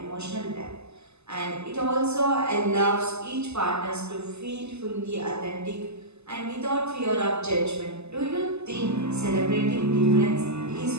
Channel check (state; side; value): late; left; 0.80 ms